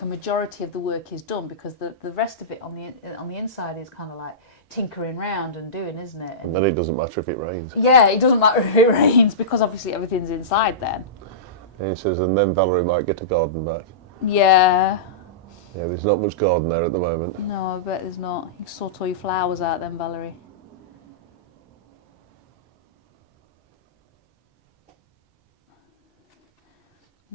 a majority of the work is done, because the rest of it on the inside is kind of like tinkering round and doing, isn't it? And then it doesn't matter if it rains. Yeah, it doesn't matter if it rains, because obviously everything's inside then. And he says, and then Valerie might get a garden back. Yeah. Yeah, there's not much garden there at the moment. No, I bet there's not. You can sort all your flowers out then, Valerie.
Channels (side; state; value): both; normal; correlation -0.18